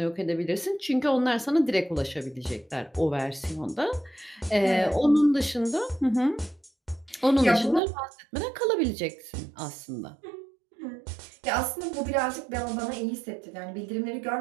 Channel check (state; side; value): drops out; left; at 7.8 s